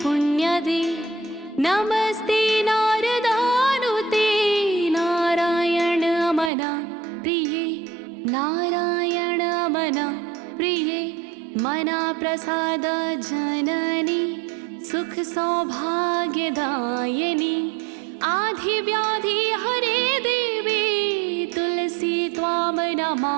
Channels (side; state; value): left; drops out; at 6.5 s